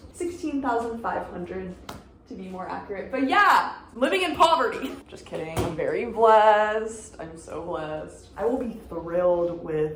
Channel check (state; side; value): identical; both; correlation 1.00